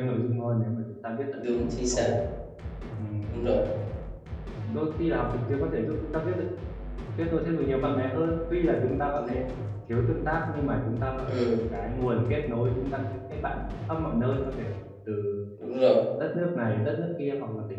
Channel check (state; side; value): identical; both; correlation 1.00